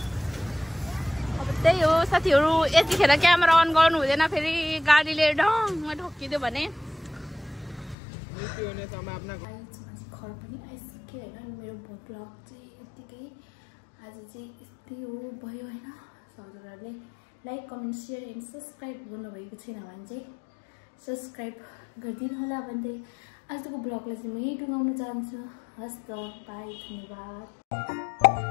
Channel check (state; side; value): drops out; right; at 8.0 s